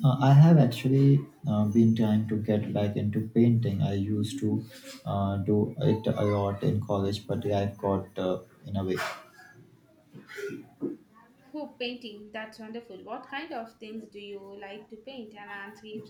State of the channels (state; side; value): identical; both; correlation 1.00